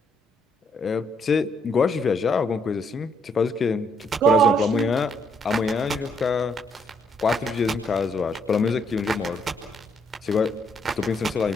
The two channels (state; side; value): normal; both; correlation 0.72